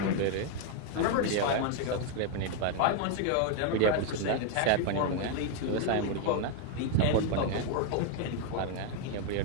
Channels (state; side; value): different; both; correlation 0.01